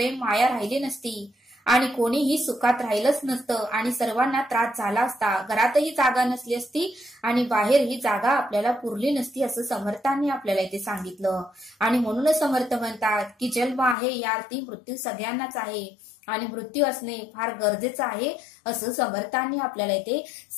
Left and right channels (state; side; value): drops out; right; at 14.0 s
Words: माया राहिली नसती आणि कोणीही सुखात राहिलंच नसतं आणि सर्वांना त्रास झाला असता. घरातही जागा नसली असती आणि बाहेर ही जागा आपल्याला पुरली नसती असं समर्थांनी आपल्याला इथे सांगितलं. आणि म्हणूनच समर्थ म्हणतात की जन्म आहे या अर्थी मृत्यू सगळ्यांनाच आहे आणि मृत्यू असणे फार गरजेचं आहे असं समर्थांनी आपल्याला इथे